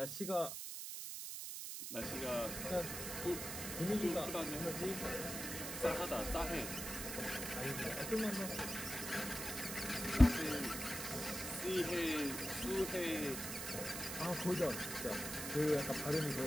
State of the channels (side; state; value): right; noise; hiss, 5 dB below the sound